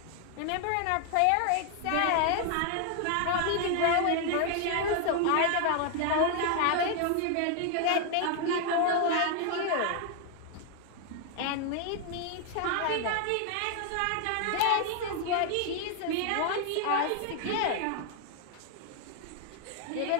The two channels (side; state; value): both; different; correlation 0.00